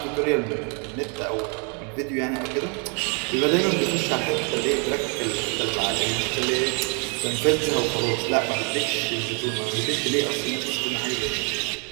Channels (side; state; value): left; quieter; 36.2 dB